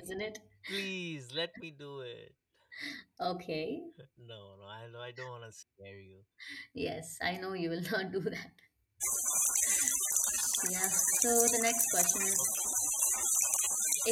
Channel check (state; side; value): identical; both; correlation 1.00